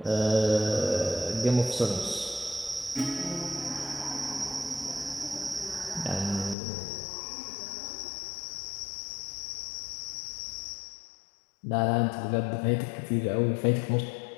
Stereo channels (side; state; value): right; drops out; at 6.6 s